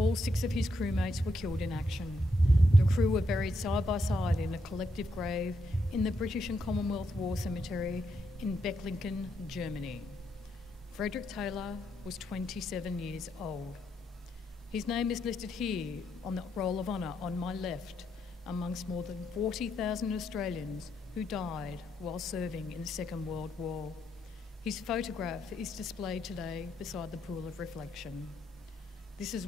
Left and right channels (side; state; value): both; normal; correlation 0.79